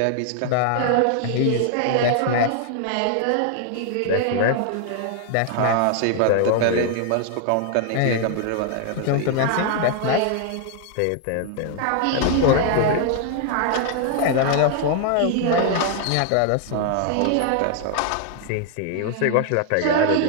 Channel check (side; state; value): both; different; correlation 0.00